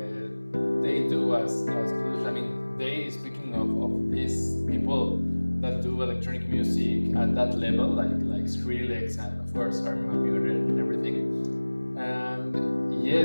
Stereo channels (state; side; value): inverted; both; correlation -1.00